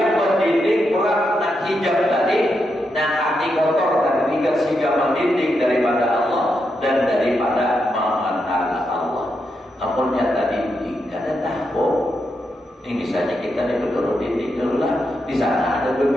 pendidik peran dan hijab tadi. Nah hati kotor dan tidak sehingga mendidik daripada Allah dan daripada mengenal Allah. Namunnya tadi tidak ada tahu. Ini misalnya kita nih berdua didik dulu lah. Di sana ada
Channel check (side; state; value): both; normal; correlation 0.84